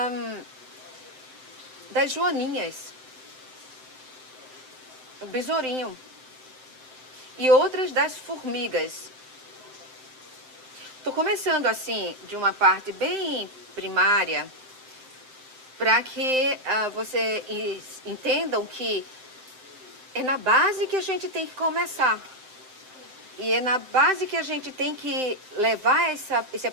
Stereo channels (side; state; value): left; late; 7.7 ms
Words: joaninhas, o besourinho, e outras das formigas. Estou começando assim, de uma parte bem primária, para que vocês entendam que é na base que a gente tem que começar. E é na base que a gente tem que levar esse